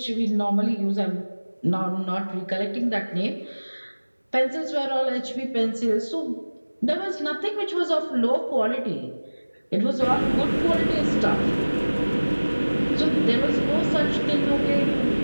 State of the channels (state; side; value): inverted; both; correlation -1.00